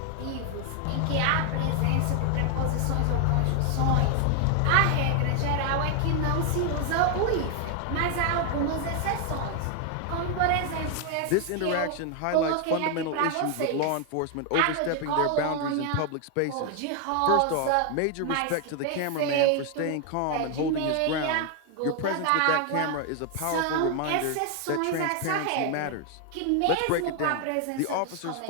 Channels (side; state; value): both; different; correlation 0.00